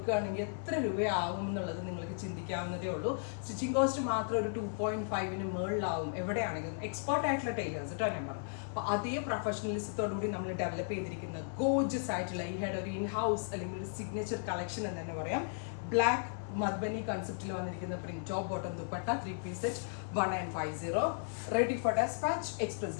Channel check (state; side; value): silent; right; 54 dB below the other